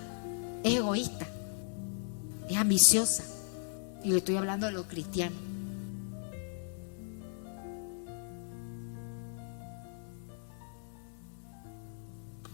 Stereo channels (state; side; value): silent; right; digital silence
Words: es egoísta, es ambiciosa. Y le estoy hablando de los cristianos.